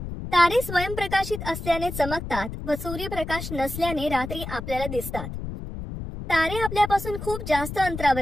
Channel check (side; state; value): left; noise; rumble, 8 dB below the sound